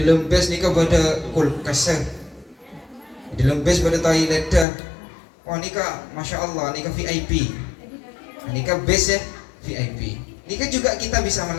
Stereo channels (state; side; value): drops out; right; at 4.7 s